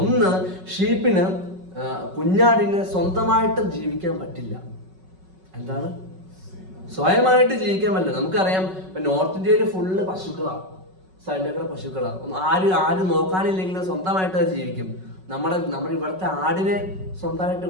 ഷീപ്പിന് കുഞ്ഞാടിന് സ്വന്തമായിട്ട് ജീവിക്കാൻ പറ്റില്ല. എന്താണ്? സ്വയമായിട്ട് ജീവിക്കാൻ പറ്റില്ല. നമുക്കറിയാം ഇപ്പൊ നോർത്ത് ഇന്ത്യയിൽ ഫുള്ള് പശുക്കളാണ്, സൈഡിലേക്കുള്ള പശുക്കളാണ്. ആരും നോക്കാനില്ലെങ്കിലും സ്വന്തമായിട്ട് അത് ജീവിക്കും. നമ്മുടെ ഇവിടുത്തെ ആടിനെ സ്വന്തമായിട്ട്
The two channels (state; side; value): late; left; 5.4 ms